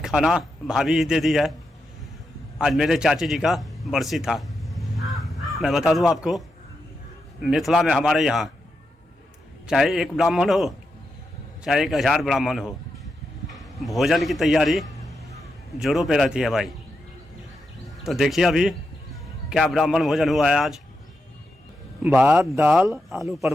खाना भाभी ही दे दी है। आज मेरे चाची जी का बरसी था। मैं बता दूं आपको, मिथिला में हमारे यहाँ चाहे एक ब्राह्मण हो चाहे 1000 ब्राह्मण हो, भोजन की तैयारी जोरों पे रहती है भाई। तो देखिए अभी क्या ब्राह्मण भोजन हुआ है आज। भात, दाल, आलू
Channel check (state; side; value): normal; both; correlation 0.86